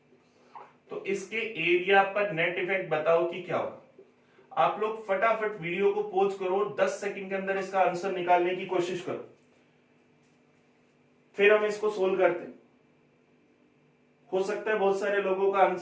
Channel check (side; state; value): both; identical; correlation 1.00